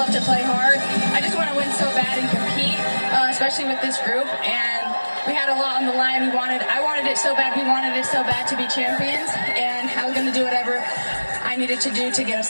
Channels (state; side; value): inverted; both; correlation -1.00